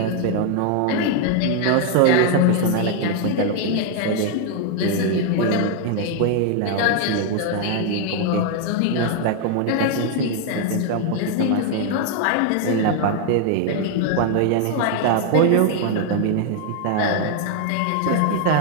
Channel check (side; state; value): both; different; correlation 0.00